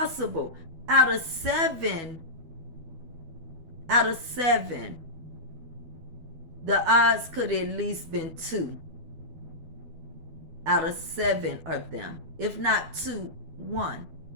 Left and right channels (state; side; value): late; left; 12 ms